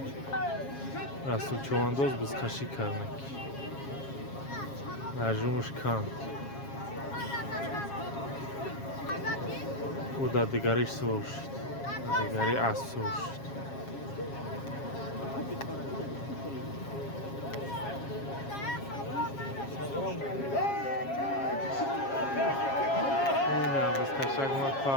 Расул чувандоз бузкаши карнак. Нажумуш кан. У да дигариш суршид. Дигари ас суршид. Ина бузкашак мат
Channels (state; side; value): late; right; 7.3 ms